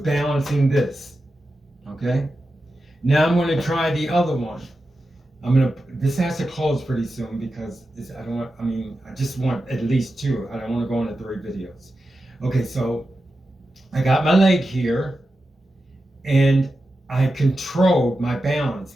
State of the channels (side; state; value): both; normal; correlation 0.91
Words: this. Okay? Now I'm going to try the other one. This has to close pretty soon because I just want at least 2. I don't want to go into 3 videos. Okay, so I got my leg here, and I controlled my